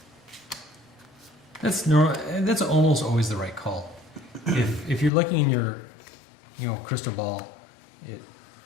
That's almost always the right call. If you're looking in your, crystal ball,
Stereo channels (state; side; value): drops out; right; at 5.1 s